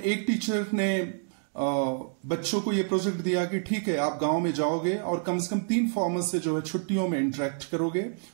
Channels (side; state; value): left; silent; 59 dB below the other